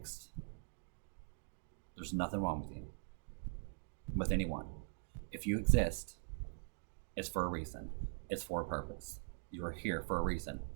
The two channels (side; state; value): left; silent; digital silence